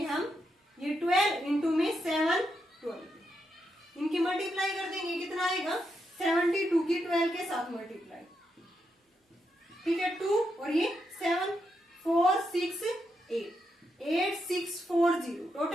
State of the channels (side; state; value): both; normal; correlation 0.83